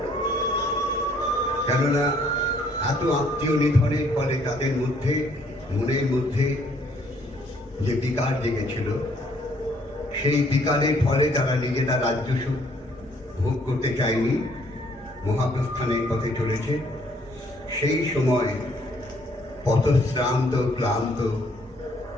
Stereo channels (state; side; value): normal; both; correlation 0.64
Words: কেননা এত আত্মীয় নিধনের ফলে তাদের মধ্যে মনের মধ্যে যে বিকার জেগেছিল, সেই বিকারের ফলে তারা নিজেরা রাজ্য সুখ ভোগ করতে চায়নি, মহাপ্রস্থানের পথে চলেছে। সেই সময় পথশ্রান্ত ক্লান্ত